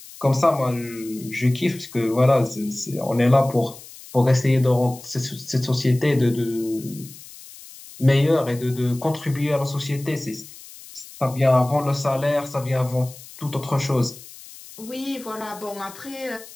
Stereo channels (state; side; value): noise; left; hiss, 18 dB below the sound